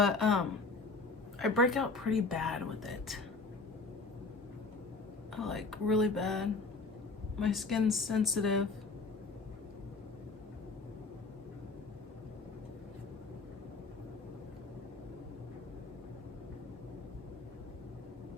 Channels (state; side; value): quieter; right; 3.9 dB